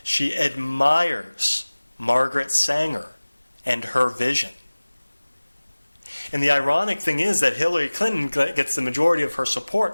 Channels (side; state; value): both; inverted; correlation -1.00